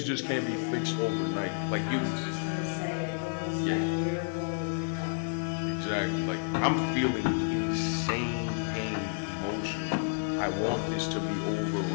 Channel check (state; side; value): silent; right; 57 dB below the other